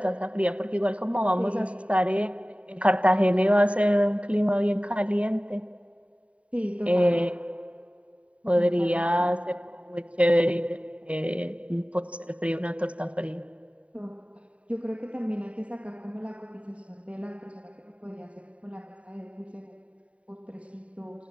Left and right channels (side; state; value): left; late; 0.065 ms